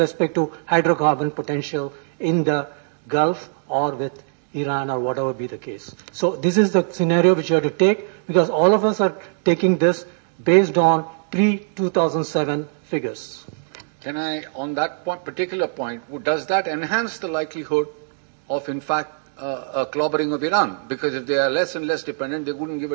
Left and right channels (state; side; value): silent; left; digital silence